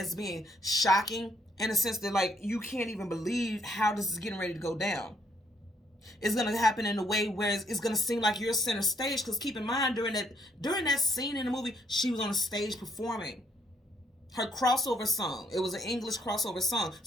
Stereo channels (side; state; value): both; normal; correlation 0.70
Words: being shocking, in a sense that, like, you can't even believe how this is getting ready to go down. It's going to happen in a way where it's going to seem like you're center stage, because keep in mind, during that scene in the movie, she was on a stage performing her crossover song. It was an English crossover song.